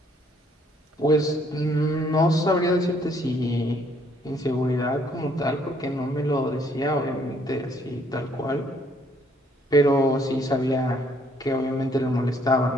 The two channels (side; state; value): both; normal; correlation 0.65